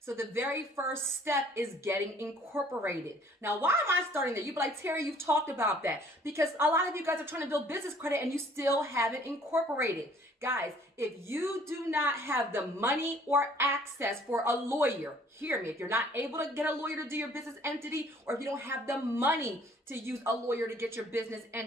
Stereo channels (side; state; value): both; normal; correlation 0.57